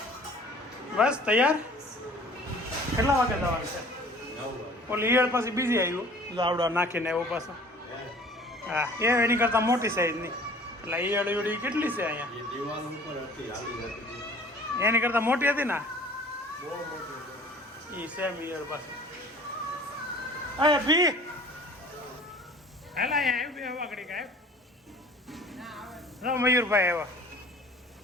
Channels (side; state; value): both; normal; correlation 0.48